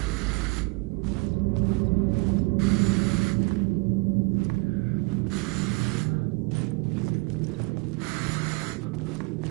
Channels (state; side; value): quieter; left; 27.2 dB